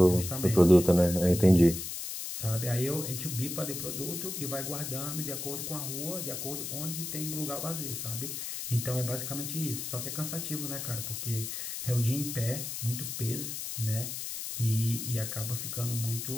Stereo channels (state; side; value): noise; left; hiss, 5 dB below the sound